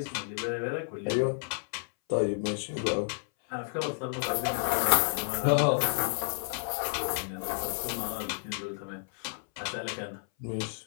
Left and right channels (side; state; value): right; silent; 57 dB below the other